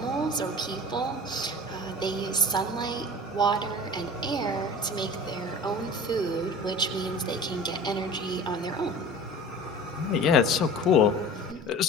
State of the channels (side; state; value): both; normal; correlation 0.39